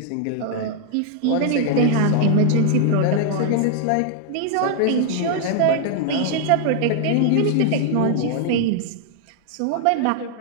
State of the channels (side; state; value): both; different; correlation 0.00